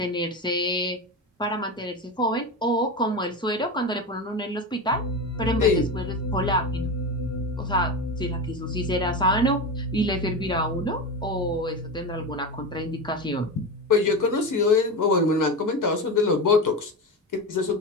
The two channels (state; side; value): normal; both; correlation 0.21